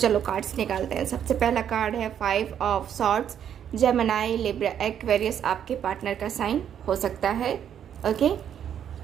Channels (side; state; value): left; quieter; 9.2 dB